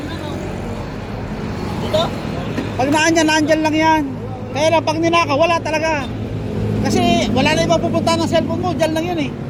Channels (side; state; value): both; identical; correlation 1.00